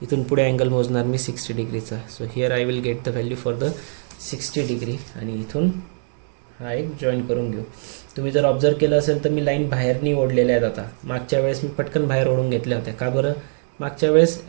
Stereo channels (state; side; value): silent; left; 64 dB below the other